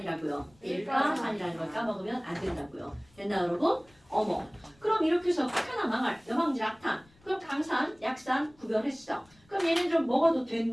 일가산이라는 걸 까먹으면 안 된다고요. 됐나 여러분? 어머. 그럼 이렇게 해서 극한한 망할, 여망질 악탄. 그럼 강산, 약산 구별했어. 그럼 얘네들은 먹어도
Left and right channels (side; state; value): left; noise; rumble, 30 dB below the sound